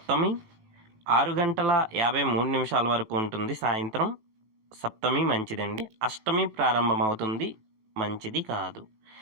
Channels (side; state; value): left; late; 18 ms